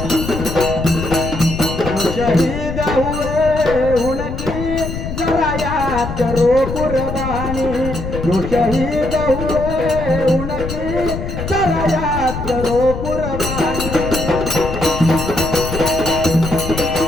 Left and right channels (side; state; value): left; noise; rumble, 6 dB below the sound